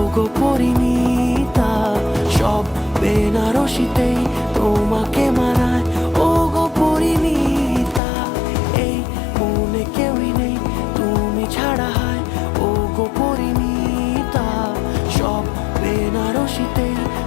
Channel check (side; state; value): right; drops out; at 8.0 s